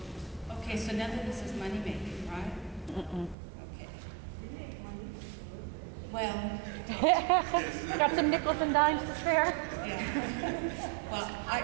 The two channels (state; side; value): drops out; left; at 3.4 s